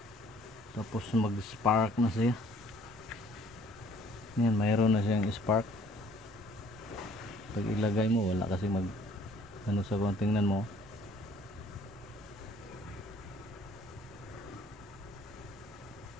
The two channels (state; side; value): normal; both; correlation 0.57